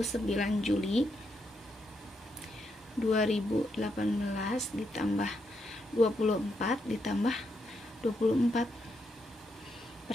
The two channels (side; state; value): both; normal; correlation 0.80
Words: Juli 2018 ditambah 24 ditambah 24.